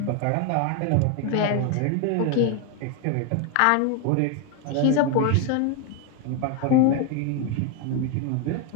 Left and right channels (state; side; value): different; both; correlation 0.01